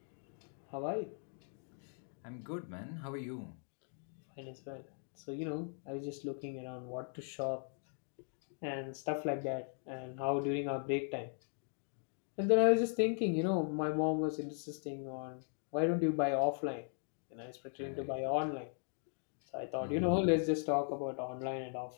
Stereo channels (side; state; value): right; silent; 52 dB below the other